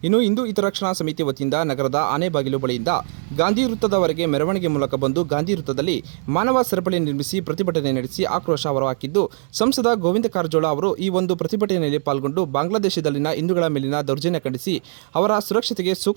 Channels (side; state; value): left; silent; 65 dB below the other